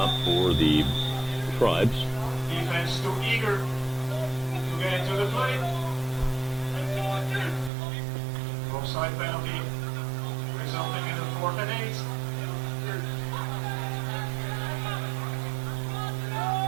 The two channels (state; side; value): drops out; left; at 7.7 s